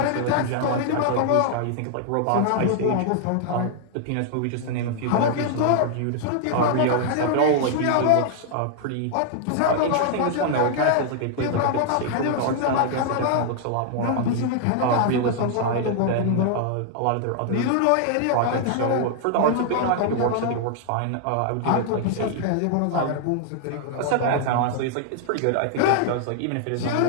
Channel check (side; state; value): both; different; correlation -0.01